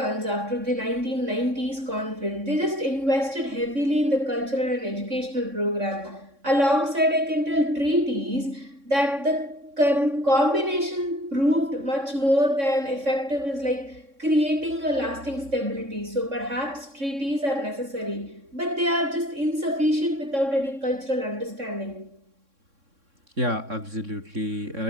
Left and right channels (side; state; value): left; late; 3.6 ms